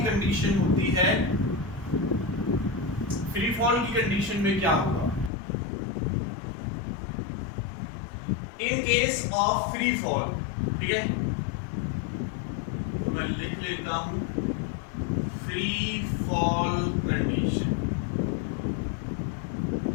कंडीशन होती है, फ्री फॉल की कंडीशन में क्या होगा, in case of free fall, ठीक है, तो मैं लिख लेता हूं फ्री फॉल कंडीशन।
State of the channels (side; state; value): right; drops out; at 5.3 s